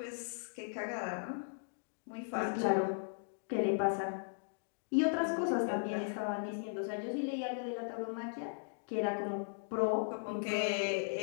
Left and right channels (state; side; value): silent; right; digital silence